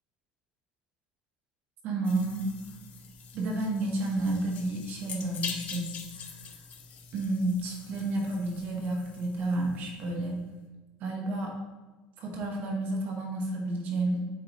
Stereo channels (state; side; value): normal; both; correlation 0.65